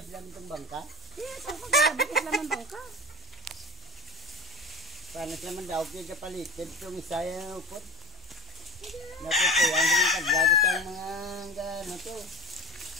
lang itong bangka. Yes, ang pagkaga, sila ng bangka. Paano sila man daw kayo kapalitin itong isa yung upot. Natutuyan sa mga kadlado sa mga gano to.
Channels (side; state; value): both; normal; correlation 0.33